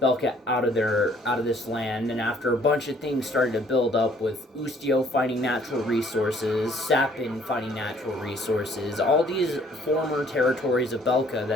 Belka out of this land, and after a bunch of things started to build up with Ustio finding natural resources, Sapin finding natural resources, all these former territories of Belka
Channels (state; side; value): normal; both; correlation 0.60